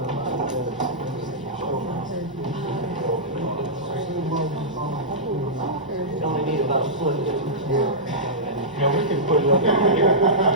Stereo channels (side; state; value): both; normal; correlation -0.15